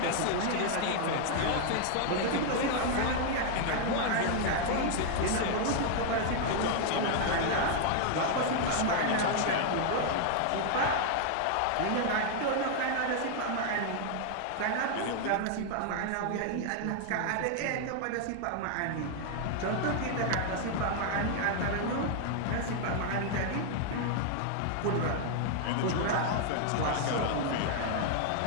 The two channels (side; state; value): both; different; correlation 0.00